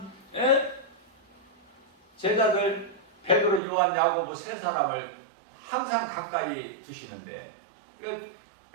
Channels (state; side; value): drops out; left; at 3.6 s